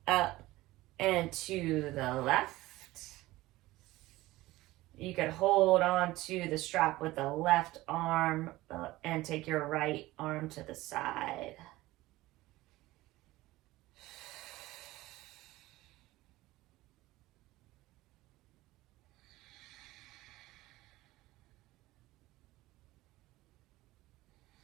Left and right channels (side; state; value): left; quieter; 18.1 dB